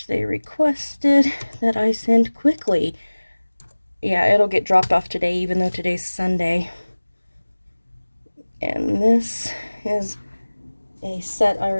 they requested that I send quickly. Yeah, it'll get dropped off today, even though today's Sunday. And this is a set I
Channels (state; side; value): inverted; both; correlation -1.00